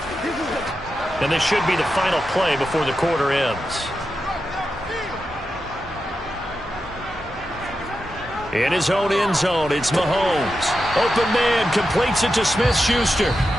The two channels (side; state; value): both; normal; correlation 0.89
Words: And this should be the final play before the quarter ends. In his own end zone, it's Mahomes. Open man, completes it to Smith-Schuster.